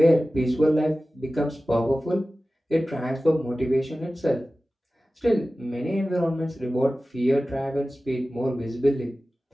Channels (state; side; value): normal; both; correlation 0.96